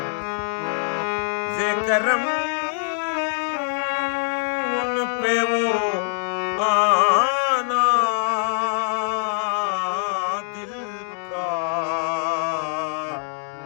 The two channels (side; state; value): right; silent; 63 dB below the other